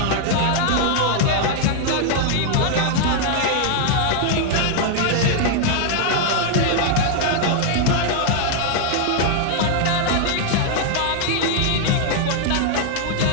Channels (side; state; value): both; different; correlation 0.00